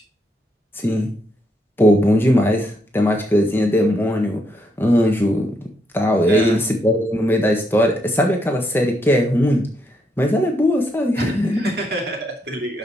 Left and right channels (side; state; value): both; normal; correlation 0.77